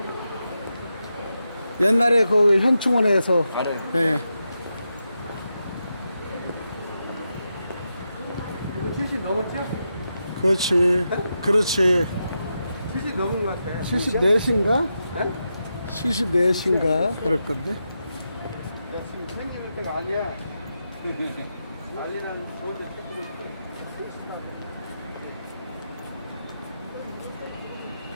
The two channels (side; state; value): both; inverted; correlation -0.87